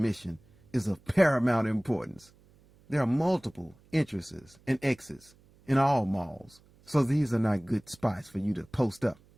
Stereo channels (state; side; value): noise; right; hum, 29 dB below the sound